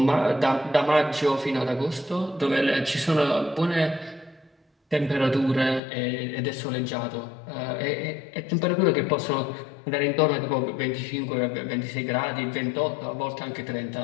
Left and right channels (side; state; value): right; drops out; at 5.8 s